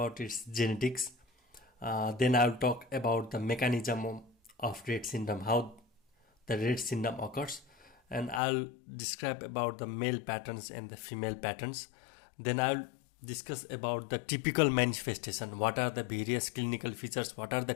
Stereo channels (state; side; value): drops out; right; at 8.4 s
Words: its genetics, then I will talk about the mechanism of Rett syndrome, how the Rett syndrome occurs, and I'll describe about the male patterns and the female patterns. Then I'll discuss about the typical manifestation, what are the various clinical features, what are the